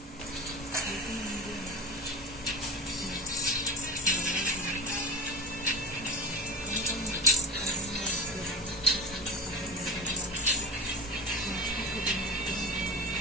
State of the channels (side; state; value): both; normal; correlation 0.31